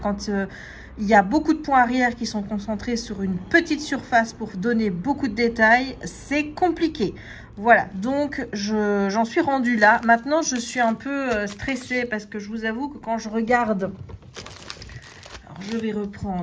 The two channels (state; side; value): identical; both; correlation 1.00